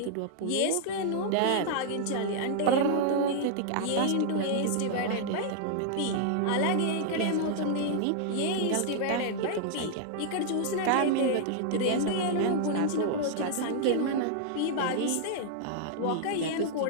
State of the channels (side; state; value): both; different; correlation -0.01